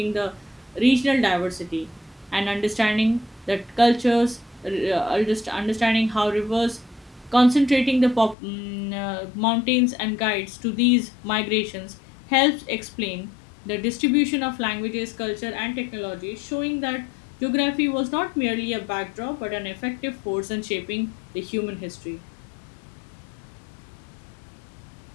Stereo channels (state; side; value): drops out; right; at 8.3 s